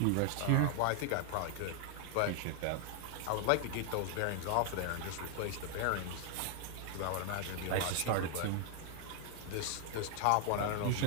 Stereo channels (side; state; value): both; different; correlation 0.00